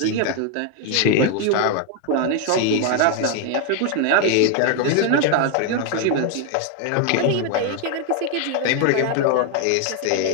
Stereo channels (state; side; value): different; both; correlation 0.01